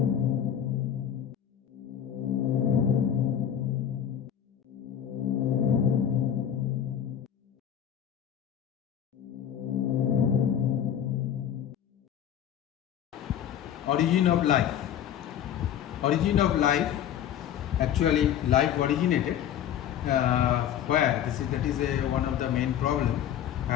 of life. Origin of life, actually life originated where that is one of the main problem,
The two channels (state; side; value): quieter; right; 9.7 dB